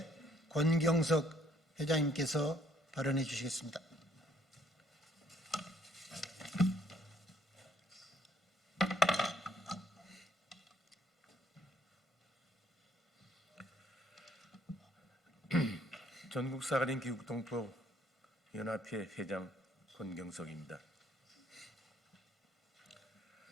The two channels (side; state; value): both; normal; correlation 0.65